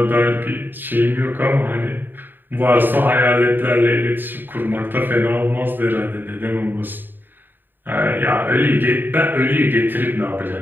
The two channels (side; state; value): left; late; 0.093 ms